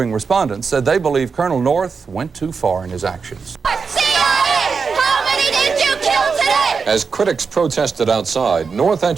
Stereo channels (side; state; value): left; quieter; 5.3 dB